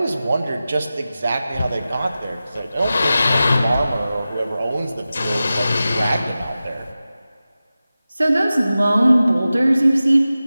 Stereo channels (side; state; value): both; inverted; correlation -0.95